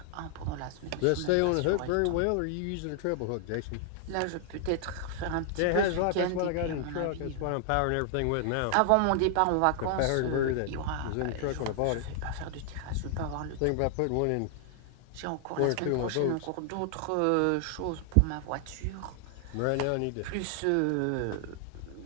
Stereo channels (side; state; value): both; different; correlation 0.00